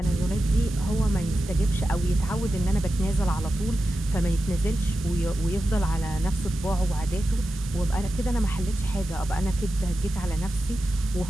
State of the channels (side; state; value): both; normal; correlation 0.92